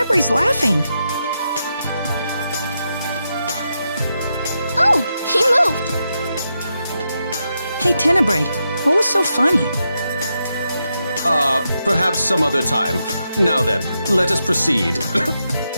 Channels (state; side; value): inverted; both; correlation -0.85